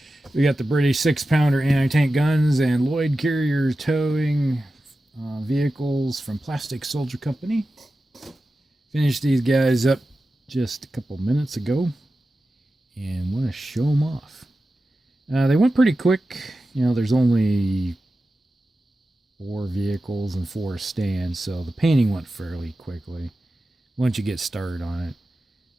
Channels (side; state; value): both; normal; correlation 0.93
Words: We got the British 6-pounder anti-tank guns and Loyd carrier towing vehicles from Plastic Soldier Company. Finished these guys up just a couple minutes ago and want to show them off. They went pretty quick. You know, there's only 4 vehicles and 4 stands, so the painting went fairly quickly once you get started on it.